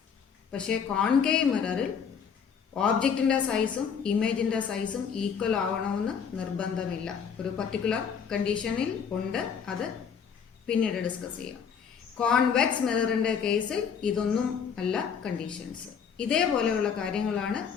പക്ഷേ കോൺകേവ് മിററിൽ ഓബ്ജക്റ്റിൻ്റെ സൈസും ഇമേജിൻ്റെ സൈസും ഈക്വൽ ആവണമെന്ന് നിർബന്ധമില്ല. ഒരു പർട്ടിക്കുലർ കണ്ടീഷനിൽ ഉണ്ട്, അത് പിന്നീട് ഡിസ്കസ് ചെയ്യാം. കോൺവെക്സ് മിററിൻ്റെ കേസിൽ ഇതൊന്നും അല്ല കണ്ടീഷൻസ്. ഇതേപോലെയുള്ള കാര്യങ്ങളാണ്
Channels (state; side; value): quieter; right; 6.9 dB